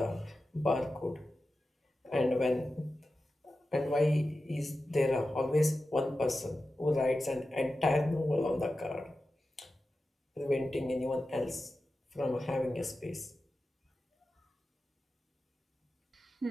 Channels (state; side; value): normal; both; correlation 0.93